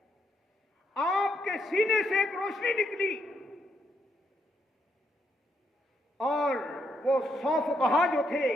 آپ کے سینے سے ایک روشنی نکلی، اور وہ 100 فقہا جو تھے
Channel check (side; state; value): both; normal; correlation 0.77